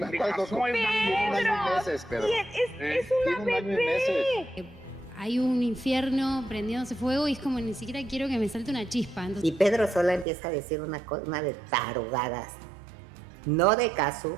Cazzu es una bebé. Hay un infierno prendiéndose fuego y es como ni siquiera quiero que me salte una chispa. Entonces... Y Pedro Sola empieza a decir una de tarugadas. No de Cazzu,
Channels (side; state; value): left; drops out; at 10.2 s